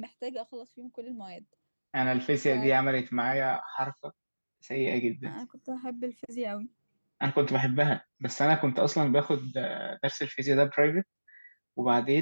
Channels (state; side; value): inverted; both; correlation -1.00